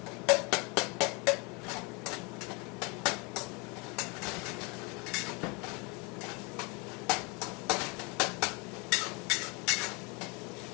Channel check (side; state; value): right; quieter; 30.4 dB